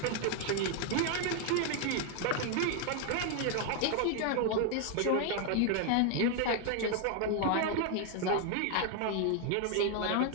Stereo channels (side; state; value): both; different; correlation 0.01